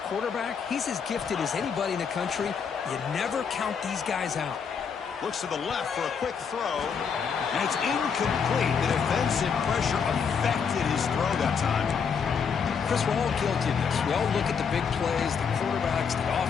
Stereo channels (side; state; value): right; quieter; 6.4 dB